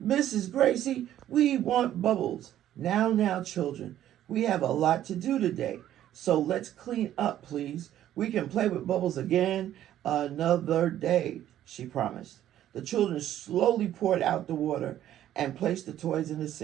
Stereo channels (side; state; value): left; quieter; 12.0 dB